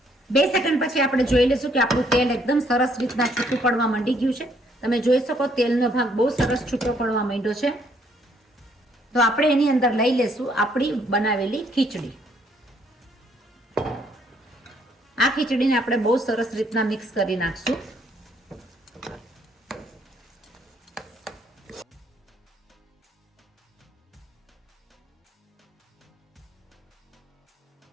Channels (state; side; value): normal; both; correlation 0.68